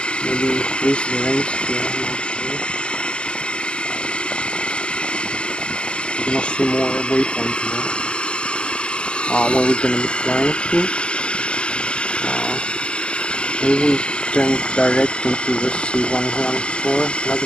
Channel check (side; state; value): right; late; 0.050 ms